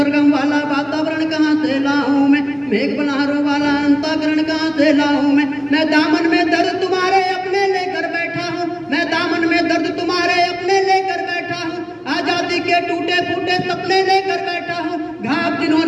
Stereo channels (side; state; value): both; identical; correlation 1.00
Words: वाला वातावरण कहाँ से लाऊं मैं, मेघ बल्हारों वाला अंतःकरण कहाँ से लाऊं मैं दामन में दर्द तुम्हारे अपने लेकर बैठा हूँ, मैं दामन में दर्द तुम्हारे अपने लेकर बैठा हूँ। आजादी के टूटे फूटे सपने लेकर बैठा हूँ। घाव